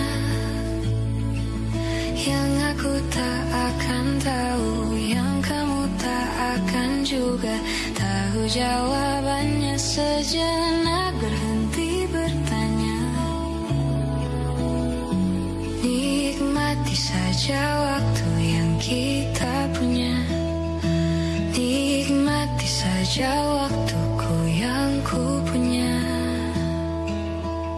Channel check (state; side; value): identical; both; correlation 1.00